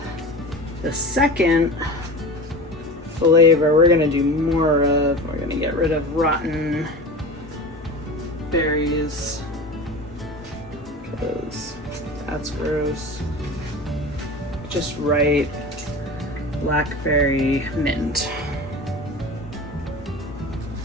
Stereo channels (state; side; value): normal; both; correlation 0.33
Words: the second flavor we're gonna do more of, we're gonna get rid of rotten berries because that's gross. Just right blackberry mint.